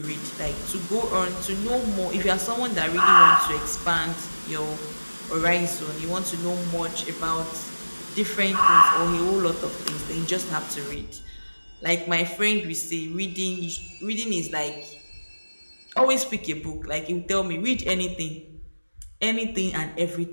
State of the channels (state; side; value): inverted; both; correlation -1.00